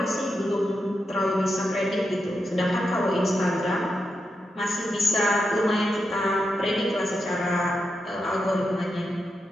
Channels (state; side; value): normal; both; correlation 0.86